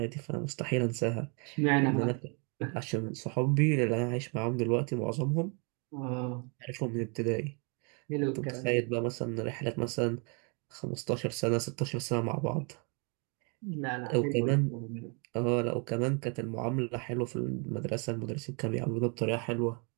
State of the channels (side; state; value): left; quieter; 35.7 dB